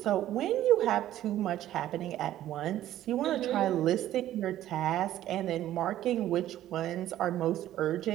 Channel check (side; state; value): left; quieter; 13.1 dB